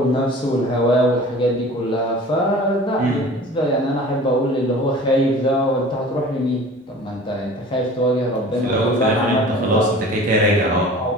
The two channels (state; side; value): normal; both; correlation 0.42